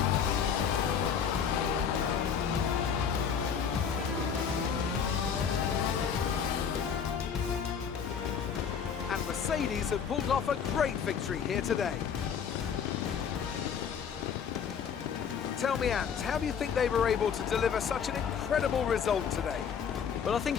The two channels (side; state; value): right; quieter; 7.2 dB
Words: And Mercedes have pulled off a great victory here today. Tell me, Ant, how do you think they were able to deliver such an incredible result today? Well, I think